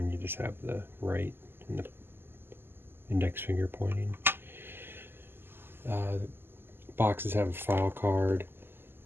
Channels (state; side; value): late; left; 0.11 ms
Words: you just have the right and the index finger pointing. The boxes have a file card,